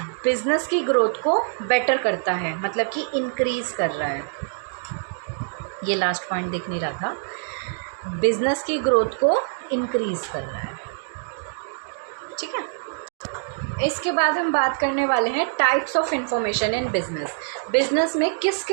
बिजनेस की ग्रोथ को बेटर करता है, मतलब कि इंक्रीज़ कर रहा है। ये लास्ट पॉइंट दिख नहीं रहा था, बिजनेस की ग्रोथ को इंक्रीज़ कर रहा है। ठीक है, इसके बाद हम बात करने वाले हैं types of information in business में किस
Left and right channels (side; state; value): left; silent; digital silence